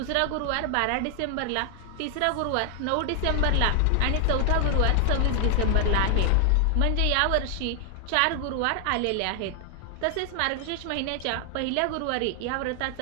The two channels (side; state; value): both; different; correlation 0.00